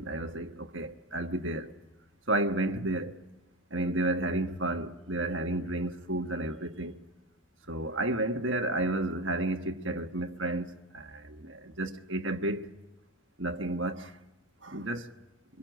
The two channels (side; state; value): both; normal; correlation 0.20